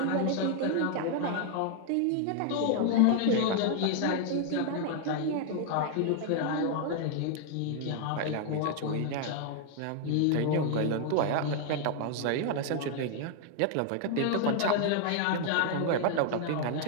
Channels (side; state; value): both; different; correlation 0.00